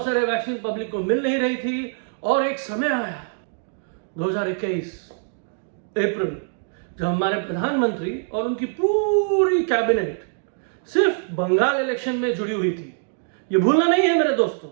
सारे वैक्सीन पब्लिक को मिल नहीं रही थी। और एक समय आया 2021 अप्रैल, जब हमारे प्रधानमंत्री और उनकी पूरी कैबिनेट सिर्फ बंगाल इलेक्शन में जुड़ी हुई थी। ये भूलना नहीं है मेरे दोस्तों।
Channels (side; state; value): left; silent; digital silence